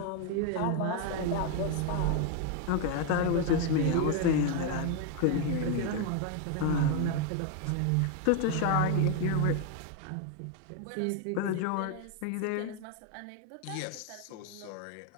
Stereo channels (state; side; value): different; both; correlation 0.01